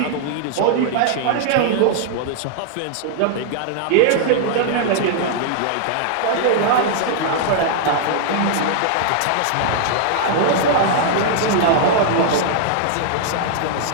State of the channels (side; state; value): both; different; correlation -0.01